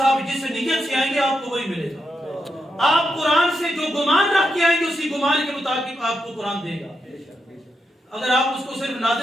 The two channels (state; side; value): normal; both; correlation 0.85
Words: جس نیت سے آئیں گے آپ کو وہی ملے گا، آپ قرآن سے جو گمان رکھ کے آئیں گے اسی گمان کے مطابق آپ کو قرآن دے گا۔ اگر آپ اس کو صرف